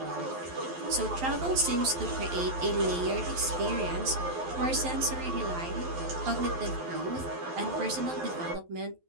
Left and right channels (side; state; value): left; late; 11 ms